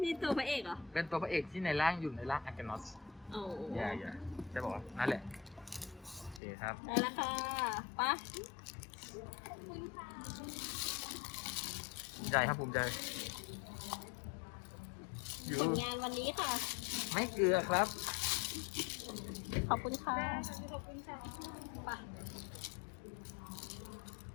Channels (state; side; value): drops out; right; at 6.4 s